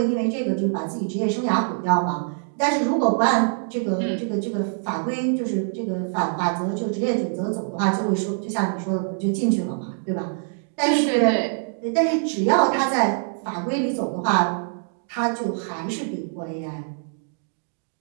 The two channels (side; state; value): left; silent; digital silence